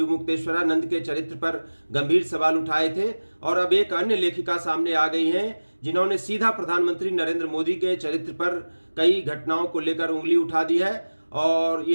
के चरित्र पर गंभीर सवाल उठाए थे, और अब एक अन्य लेखिका सामने आ गई हैं जिन्होंने सीधा प्रधानमंत्री नरेंद्र मोदी के चरित्र पर कई घटनाओं को लेकर उंगली उठा दी है। और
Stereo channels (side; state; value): both; inverted; correlation -1.00